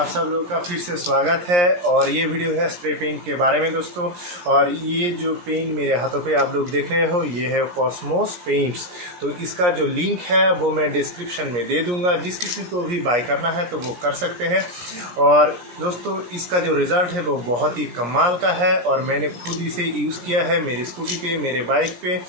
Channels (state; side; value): late; left; 17 ms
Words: सब लोगों का फिर से स्वागत है। और ये वीडियो है स्प्रे पेंट के बारे में दोस्तों। और ये जो पेंट मेरे हाथों पे आप लोग देख रहे हो ये है कॉस्मोस पेंट्स। तो इसका जो लिंक है वो मैं डिस्क्रिप्शन में दे दूंगा, जिस किसी को भी बाय करना है तो वो कर सकते हैं। और दोस्तों इसका जो रिज़ल्ट है वो बहुत ही कमाल का है और मैंने खुद इसे यूज़ किया है मेरी स्कूटी पे, मेरे बाइक पे,